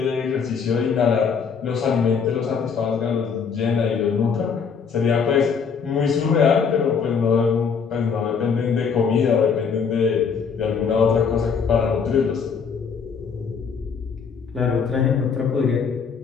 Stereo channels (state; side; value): quieter; right; 6.1 dB